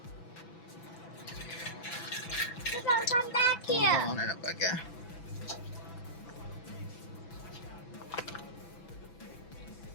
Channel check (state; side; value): late; right; 6.0 ms